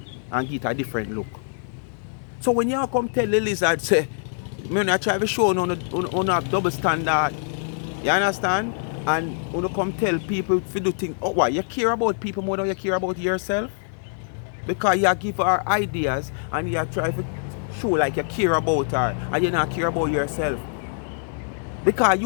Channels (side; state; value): right; silent; digital silence